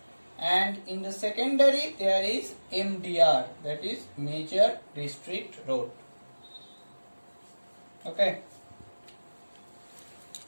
And in the secondary there is MDR, that is major district road. Okay.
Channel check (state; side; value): inverted; both; correlation -1.00